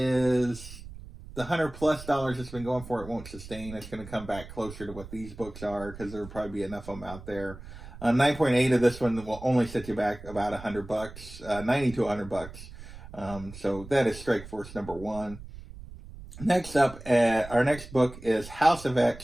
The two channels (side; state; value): right; noise; rumble, 15 dB below the sound